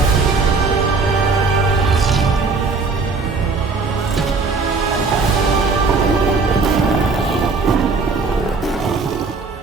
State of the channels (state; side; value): quieter; left; 4.2 dB